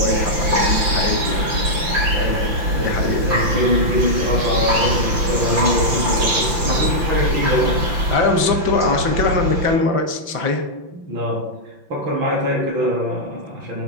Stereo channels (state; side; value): late; left; 5.9 ms